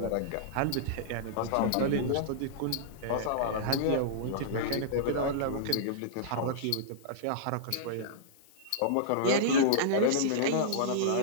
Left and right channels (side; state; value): both; different; correlation -0.02